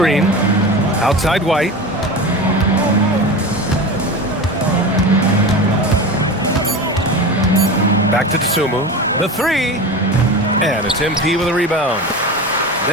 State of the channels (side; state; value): both; normal; correlation 0.28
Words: Outside White. Back to Dosunmu. The three. And it's MP with a rebound.